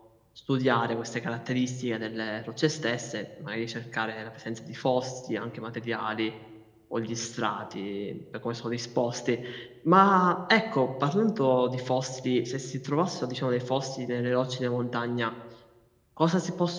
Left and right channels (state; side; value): identical; both; correlation 1.00